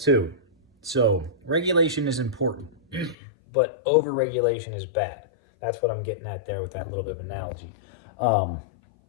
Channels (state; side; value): drops out; right; at 3.2 s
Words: So regulation is important, but over-regulation is bad. That's what I'm getting at there with that little bit of analogy.